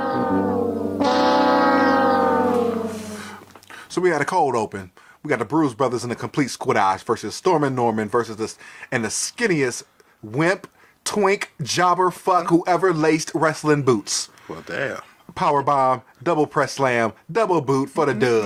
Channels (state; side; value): identical; both; correlation 1.00